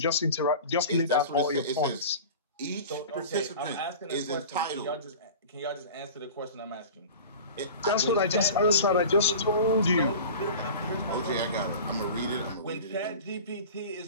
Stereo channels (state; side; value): inverted; both; correlation -0.36